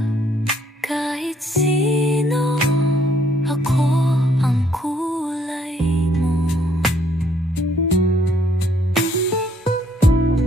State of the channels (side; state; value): both; normal; correlation 0.66